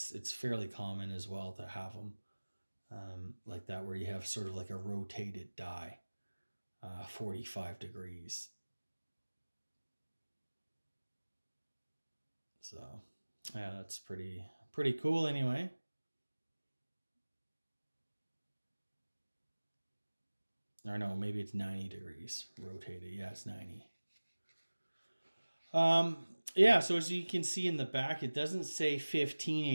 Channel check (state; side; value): inverted; both; correlation -1.00